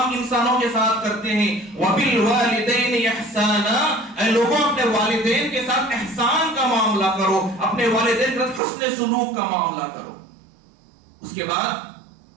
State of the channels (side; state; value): left; drops out; at 8.6 s